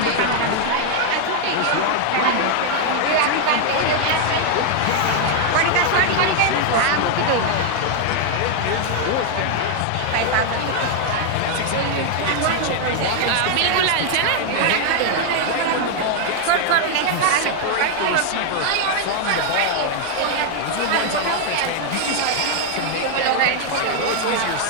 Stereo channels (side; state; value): both; different; correlation 0.00